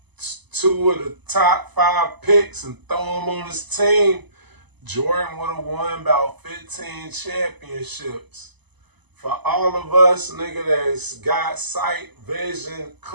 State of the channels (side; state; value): left; late; 0.99 ms